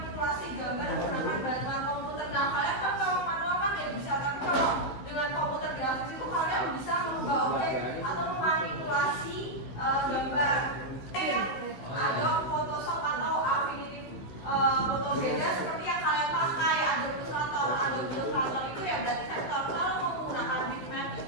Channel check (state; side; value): late; right; 15 ms